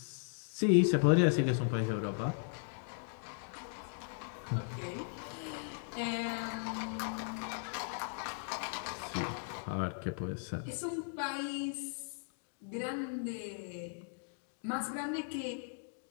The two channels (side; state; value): right; silent; digital silence